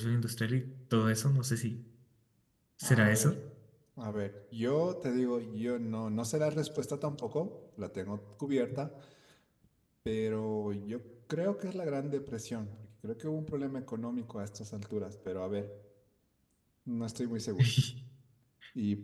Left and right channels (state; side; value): identical; both; correlation 1.00